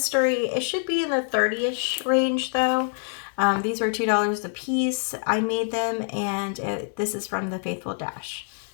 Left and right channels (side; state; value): right; silent; 61 dB below the other